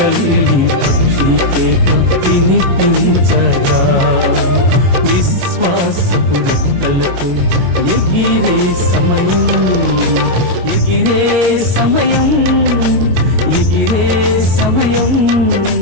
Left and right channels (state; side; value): late; left; 22 ms